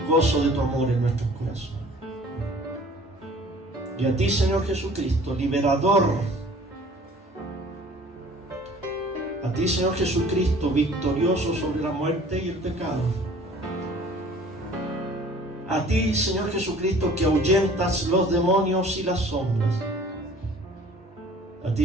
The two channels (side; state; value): both; normal; correlation 0.50